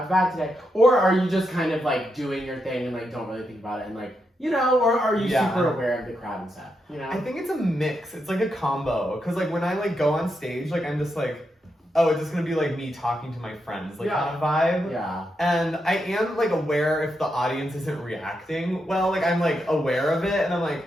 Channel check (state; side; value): normal; both; correlation 0.84